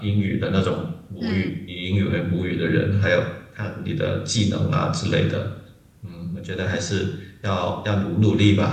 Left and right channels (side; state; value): both; identical; correlation 1.00